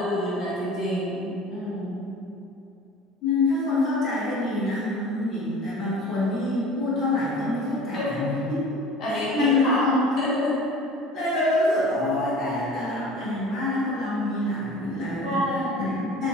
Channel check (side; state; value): both; normal; correlation 0.42